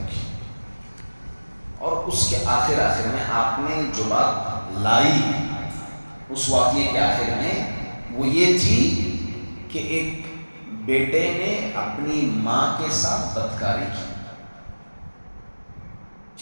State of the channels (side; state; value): both; inverted; correlation -1.00